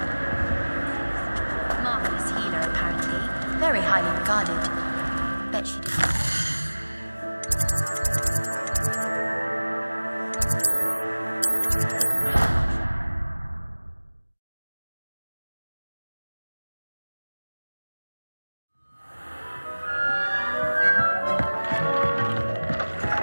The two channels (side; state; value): both; inverted; correlation -1.00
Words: Marvelous healer, apparently. Very highly regarded. Bet she did.